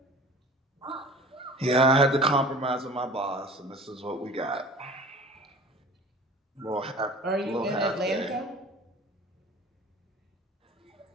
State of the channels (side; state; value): both; normal; correlation 0.42